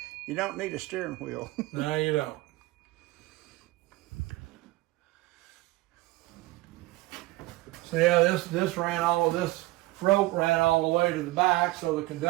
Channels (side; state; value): left; quieter; 19.3 dB